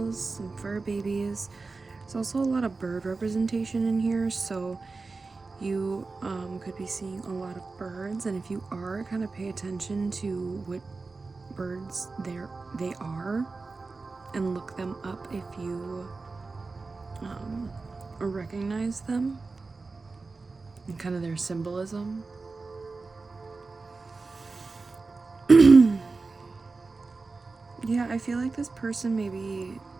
some fur babies. There's also a lot of bird representation in here, so you could be seeing a lot of birds. And if you are, kind of pay attention to what birds they are and look them up if you recognize them and kind of their symbolism. Yeah, I feel like this person, maybe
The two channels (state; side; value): quieter; left; 3.9 dB